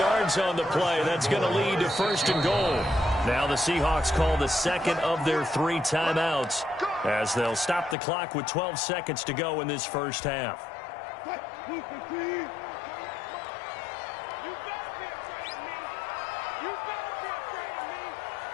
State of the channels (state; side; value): drops out; right; at 8.0 s